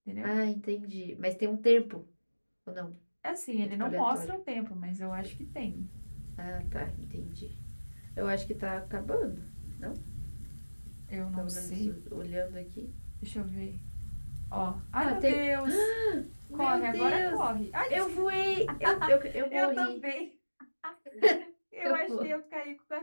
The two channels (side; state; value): both; inverted; correlation -1.00